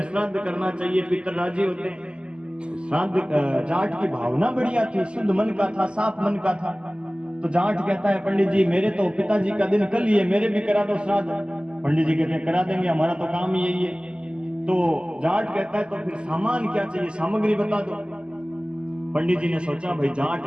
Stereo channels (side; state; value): left; late; 0.051 ms